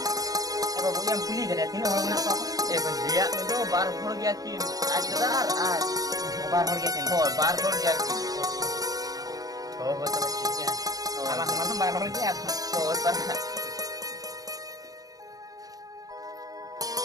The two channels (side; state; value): left; late; 0.18 ms